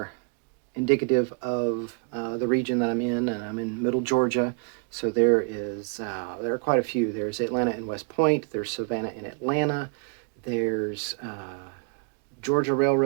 indicative of the region that I'm in, and I'm in Middle Georgia. So there are quite a few. There's Atlanta and West Point. There's Savannah and Atlanta. There's Georgia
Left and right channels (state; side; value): quieter; left; 37.7 dB